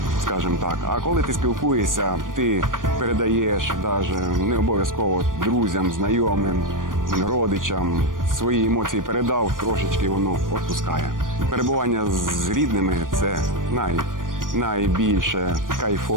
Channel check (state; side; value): late; left; 0.90 ms